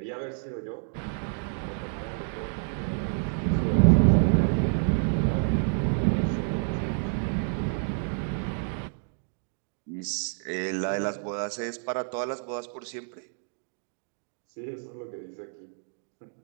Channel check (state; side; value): silent; left; 59 dB below the other